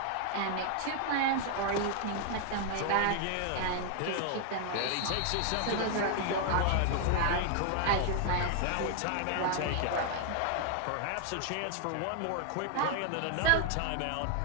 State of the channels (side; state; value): both; different; correlation 0.00